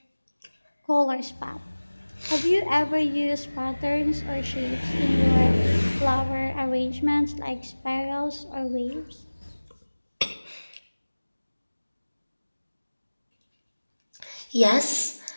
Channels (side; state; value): both; inverted; correlation -1.00